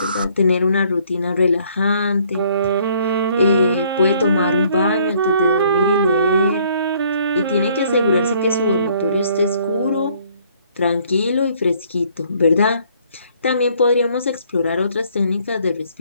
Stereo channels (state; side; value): inverted; both; correlation -0.62